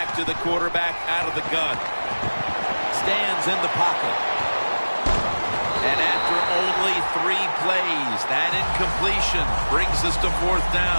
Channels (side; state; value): both; inverted; correlation -1.00